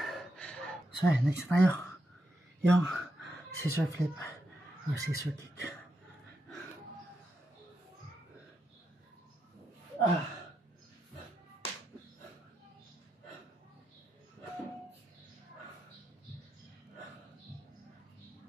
So next tayo. Yung scissor flip or scissor kick.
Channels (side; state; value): both; normal; correlation 0.84